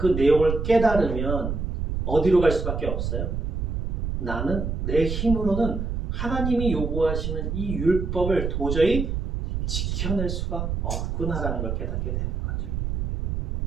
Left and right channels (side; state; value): right; noise; rumble, 1 dB below the sound